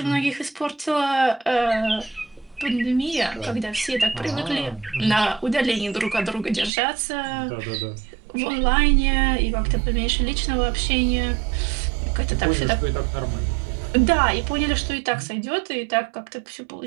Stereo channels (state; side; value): drops out; left; at 6.7 s